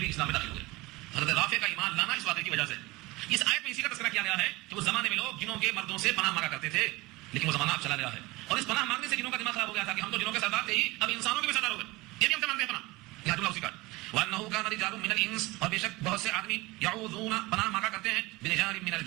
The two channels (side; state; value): left; quieter; 21.6 dB